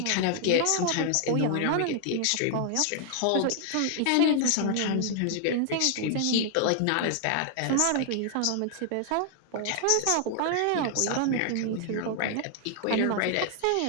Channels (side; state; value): both; different; correlation 0.00